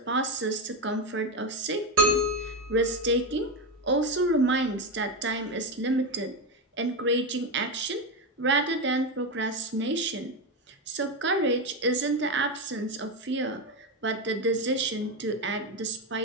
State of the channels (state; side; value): normal; both; correlation 0.12